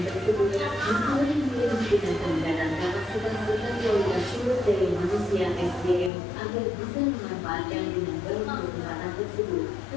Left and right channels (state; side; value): drops out; right; at 6.1 s